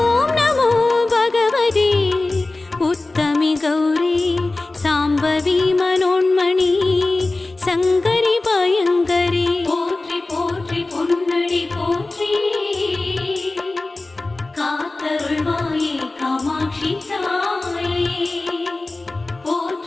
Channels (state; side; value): quieter; right; 3.1 dB